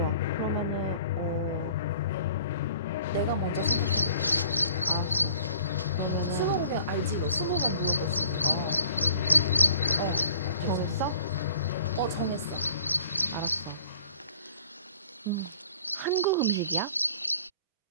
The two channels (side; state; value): both; inverted; correlation -0.52